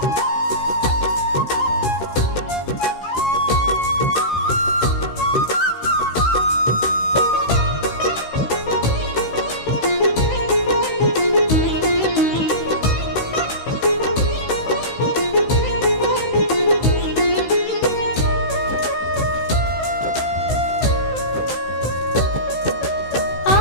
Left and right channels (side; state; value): right; late; 16 ms